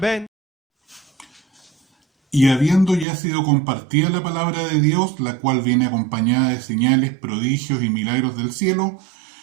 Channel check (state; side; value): drops out; left; at 3.1 s